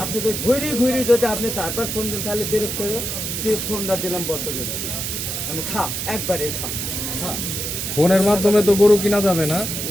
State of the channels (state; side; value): noise; right; hiss, 3 dB below the sound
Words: আপনি যদি ঘুরি যদি আপনি তারপর ফোন দেন, তাহলে বিরক্ত হয়ে দিয়ে ফোনটা দিলাম বদ্ধ করে, আমি খা একবারে খা। ফোনের মাধ্যমে তো গরু কিনা যাবে না?